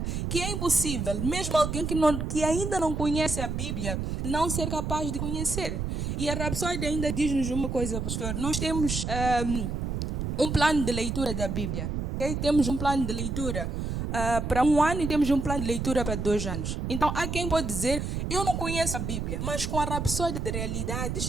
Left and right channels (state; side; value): noise; right; rumble, 2 dB below the sound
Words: que é impossível, mesmo alguém que ainda não conhece a Bíblia, não ser capaz de conhecer. E a Rapsódia ainda diz-nos uma coisa, pastor. Nós temos um plano de leitura da Bíblia. Okay? Temos um plano de leitura para 1 ano e temos um plano de leitura para 2 anos. Então, há quem pode dizer, eu não conheço a Bíblia, mas com a Rapsódia de